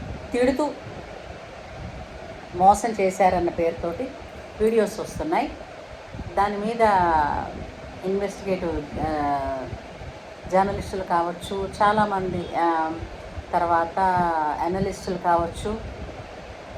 తిడుతూ మోసం చేశారన్న పేరుతోటి వీడియోస్ వస్తున్నాయి. దాని మీద ఇన్వెస్టిగేటివ్ జర్నలిస్టులు కావచ్చు, చాలామంది తర్వాత అనలిస్టులు కావచ్చు,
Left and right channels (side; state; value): both; identical; correlation 1.00